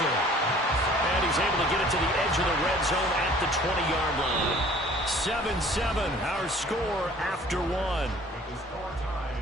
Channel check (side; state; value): both; normal; correlation 0.52